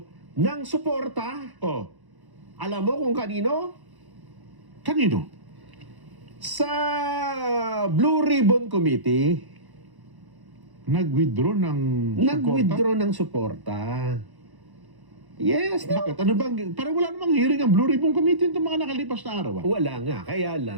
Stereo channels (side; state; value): left; late; 1.1 ms